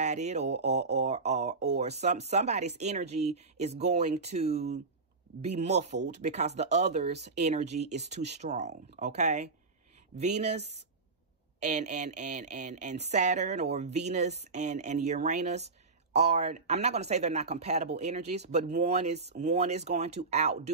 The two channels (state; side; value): quieter; left; 4.0 dB